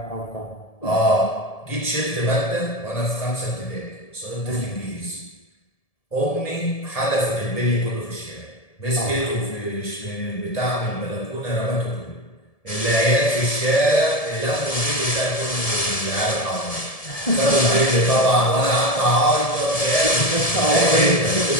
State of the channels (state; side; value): late; right; 1.7 ms